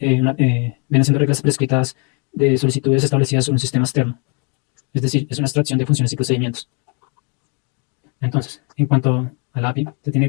reglas prescritas de solicitudes establecidas sobre un sistema externo. Es decir, es una abstracción de funciones y procedimientos. Entonces, en cuanto a la API, se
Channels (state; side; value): quieter; right; 36.3 dB